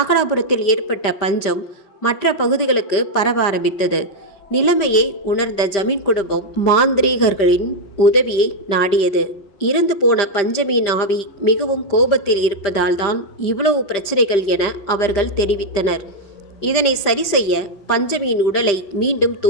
ஏற்பட்ட பஞ்சம் மற்ற பகுதிகளுக்கு பரவ ஆரம்பித்தது. நிலைமையை உணர்ந்த ஜமீன் குடும்பம் மாந்திரீகர்களின் உதவியை நாடியது. இறந்து போன பஞ்சமியின் ஆவி மிகவும் கோபத்தில் இருப்பதால் தான் இவ்வளவு பிரச்சனைகள் என அவர்கள் தெரிவித்தனர். இதனை சரி செய்ய பஞ்சமியின் உடலை மீண்டும்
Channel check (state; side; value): late; right; 5.0 ms